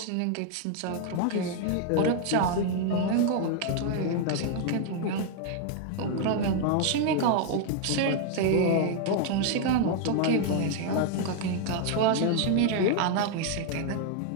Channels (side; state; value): both; different; correlation 0.00